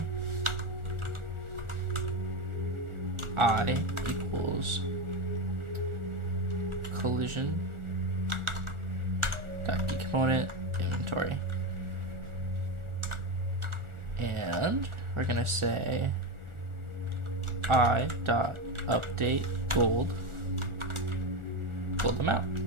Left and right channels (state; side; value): late; left; 1.4 ms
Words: I equals collision dot key component inventory, and we're gonna say I dot update gold amount,